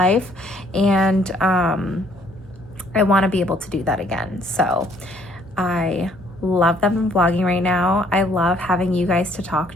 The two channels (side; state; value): both; normal; correlation 0.63